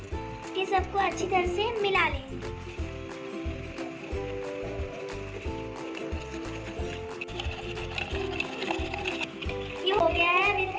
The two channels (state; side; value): identical; both; correlation 1.00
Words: ये सबको अच्छी तरह से मिला लेंगे। ये हो गया है। अब